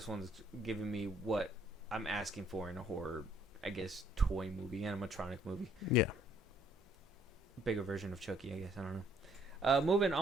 one's giving me what I'm asking for in a horror, I guess, toy movie, animatronic movie. Yeah. Bigger version of Chucky, I guess. I don't know. Moving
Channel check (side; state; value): both; normal; correlation 0.65